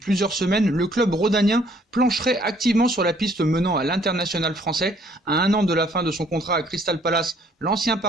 semaines, le club rhodanien plancherait activement sur la piste menant à l'international français. À un an de la fin de son contrat à Crystal Palace, l'ancien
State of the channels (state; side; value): normal; both; correlation 0.62